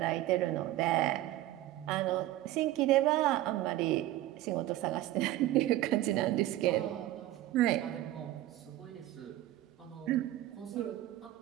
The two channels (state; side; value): quieter; left; 15.1 dB